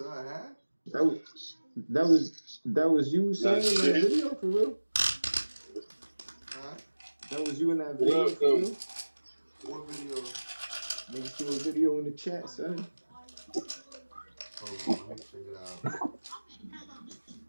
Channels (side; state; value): both; inverted; correlation -1.00